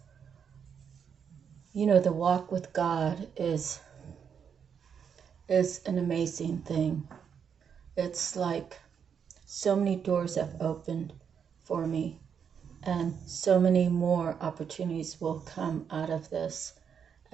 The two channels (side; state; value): left; quieter; 7.3 dB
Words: the walk with God is an amazing thing. It's like so many doors have opened for me, and so many more opportunities will come out of this.